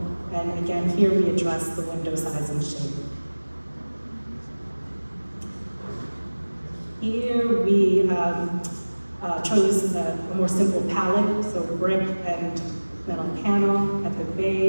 and again, here we address the window size and shape. Here we chose a more simple palette, so brick and metal panel at the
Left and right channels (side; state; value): both; inverted; correlation -1.00